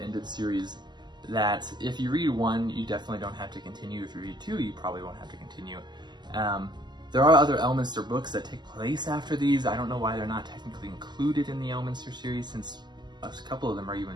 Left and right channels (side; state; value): left; late; 0.21 ms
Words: series that if you read one, you definitely don't have to continue. If you read two, you probably won't have to continue. There are other Elminster books that take place after these. I don't know why they're not technically included in the Elminster series, since a couple of them are